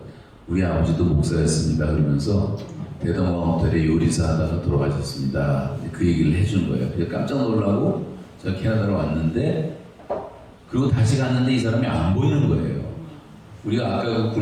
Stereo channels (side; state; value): both; identical; correlation 1.00